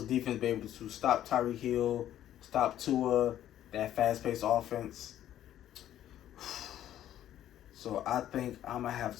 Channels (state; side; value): quieter; right; 11.8 dB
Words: defense be able to stop Tyreek Hill, stop Tua, that fast-paced offense? So I think I'm going to have